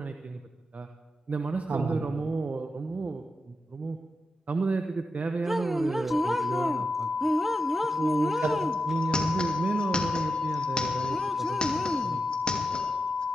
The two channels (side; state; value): both; normal; correlation 0.87